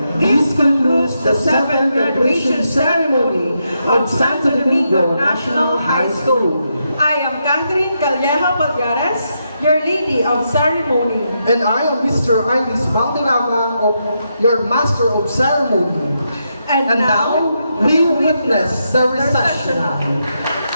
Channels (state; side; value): inverted; both; correlation -0.82